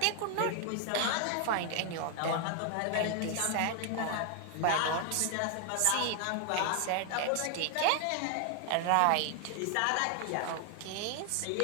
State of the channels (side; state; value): both; different; correlation 0.00